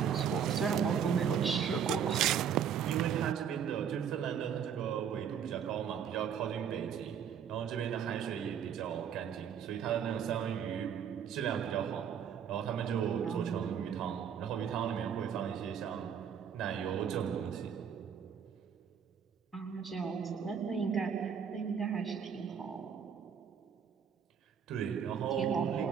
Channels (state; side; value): quieter; left; 7.9 dB